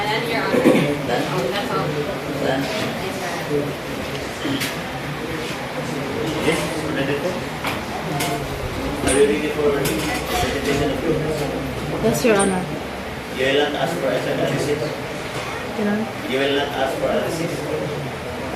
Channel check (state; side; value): identical; both; correlation 1.00